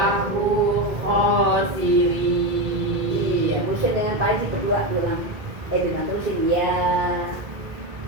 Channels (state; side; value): late; left; 2.2 ms